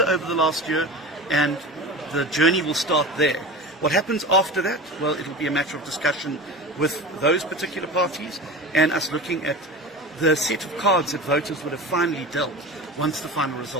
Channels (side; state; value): both; normal; correlation 0.31